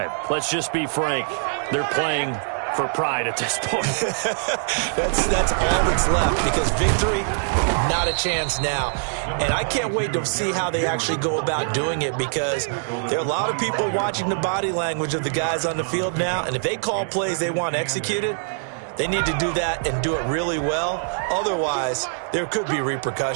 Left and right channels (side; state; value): left; silent; 63 dB below the other